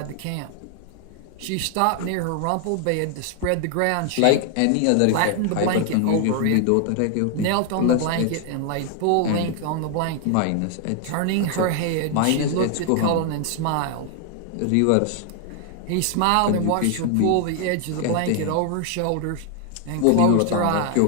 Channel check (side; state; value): both; different; correlation 0.00